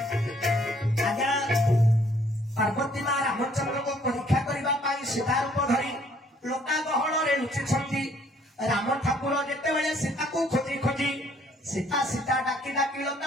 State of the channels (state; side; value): normal; both; correlation 0.63